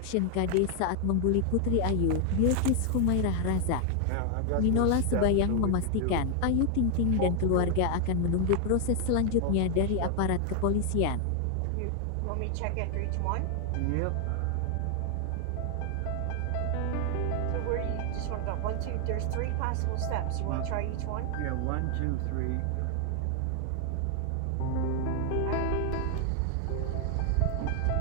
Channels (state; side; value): different; both; correlation 0.00